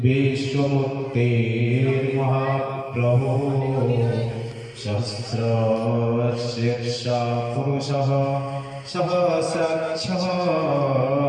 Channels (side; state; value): both; identical; correlation 1.00